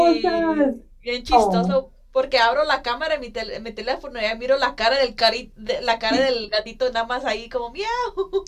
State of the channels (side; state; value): both; identical; correlation 1.00